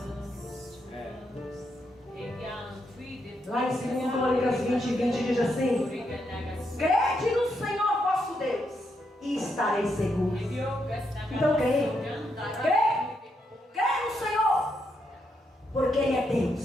Lá em 2 Crônicas 20 diz assim: crede no Senhor vosso Deus e estareis seguros. Então creia. Creia no Senhor, porque Ele é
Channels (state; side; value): normal; both; correlation 0.80